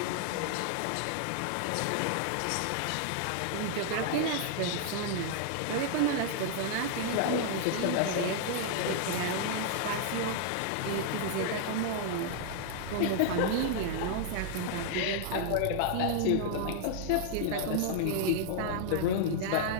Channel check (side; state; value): both; different; correlation -0.01